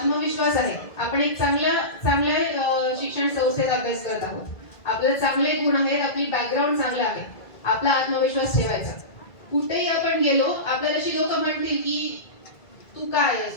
आहे, आपण एक चांगल्या शिक्षण संस्थेत अभ्यास करत आहोत, आपले चांगले गुण आहेत, आपली बॅकग्राऊंड चांगलं आहे, आपला आत्मविश्वास ठेवायचा. कुठेही आपण गेलो, आपल्याला अशी लोक म्हणतील की तू काय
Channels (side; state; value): right; late; 2.0 ms